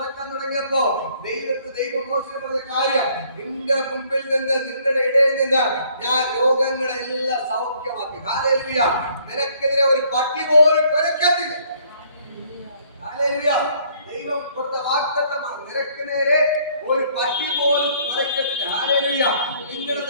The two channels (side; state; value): both; inverted; correlation -0.62